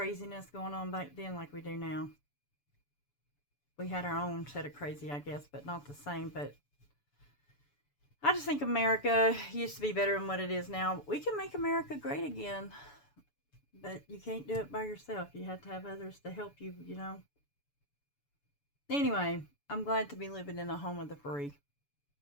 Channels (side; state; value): right; late; 7.0 ms